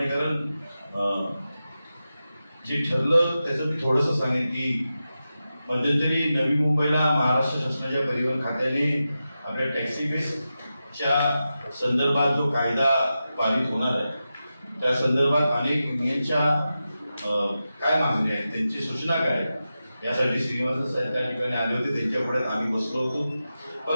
कारण जे ठरलं त्याचं मी थोडंसं सांगेन की मध्यंतरी नवी मुंबईला महाराष्ट्र शासनाच्या परिवहन खात्याने आपल्या टॅक्सी बेसच्या संदर्भात जो कायदा पारित होणार आहे त्या संदर्भात अनेक युनियनच्या काय मागण्या आहेत, त्यांची सूचना काय, यासाठी श्रीनिवासन साहेब त्या ठिकाणी आले होते. त्यांच्या पुढे आम्ही बसलो होतो.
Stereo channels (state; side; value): inverted; both; correlation -0.92